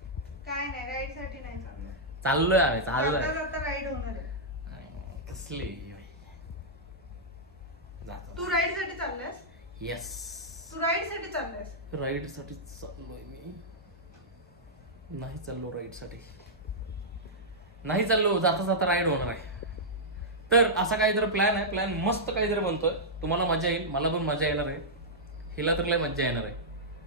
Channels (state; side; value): normal; both; correlation -0.09